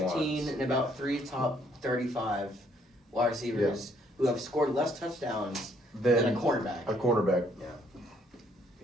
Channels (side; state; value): both; normal; correlation 0.67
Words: 15 ones. and about 3 top 35 wide receivers who have scored less touchdowns than a cornerback. A cornerback. Yeah.